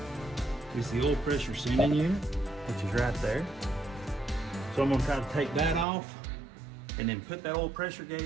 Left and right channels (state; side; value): drops out; left; at 5.9 s